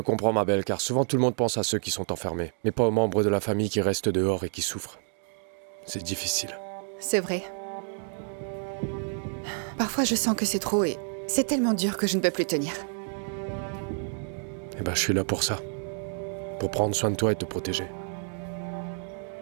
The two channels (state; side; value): silent; left; 58 dB below the other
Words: ma belle, car souvent tout le monde pense à ceux qui sont enfermés, mais pas aux membres de la famille qui restent dehors et qui souffrent. C'est difficile. C'est vrai. Parfois, je sens que c'est trop et c'est tellement dur que je ne peux plus tenir. Eh ben, je suis là pour ça. Pour prendre soin de toi et te protéger.